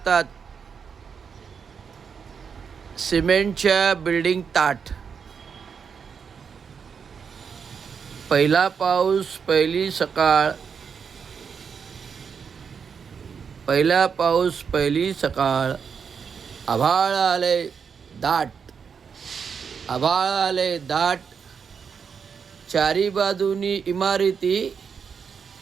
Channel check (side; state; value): left; quieter; 6.4 dB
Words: सिमेंटच्या बिल्डिंग ताट. पहिला पाऊस पहिली सकाळ. पहिला पाऊस पहिली सकाळ. आभाळ आले दाट. आभाळ आले दाट. चारी बाजूनी इमारती